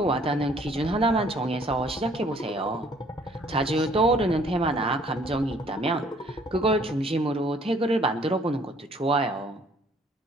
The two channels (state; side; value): normal; both; correlation 0.59